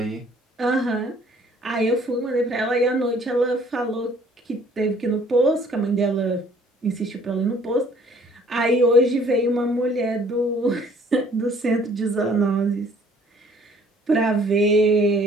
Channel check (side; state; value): both; normal; correlation 0.58